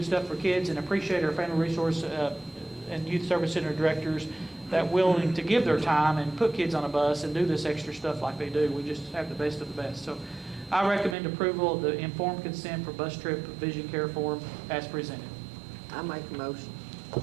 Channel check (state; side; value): drops out; left; at 11.2 s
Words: stuff for kids and appreciate our Family Resource and Youth Service Center directors that willing to give their time and put kids on a bus and do this extra stuff like they do. We just have the best of the best. So I recommend approval of the informed consent for bus trip vision care form as presented. I make a motion.